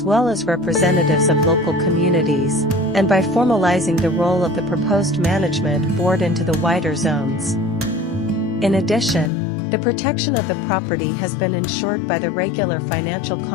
well as representatives of local communities, and by formalizing the role of the proposed management board into the wider zones. In addition, the protection of the property has been ensured by the regular financial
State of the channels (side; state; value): right; drops out; at 9.3 s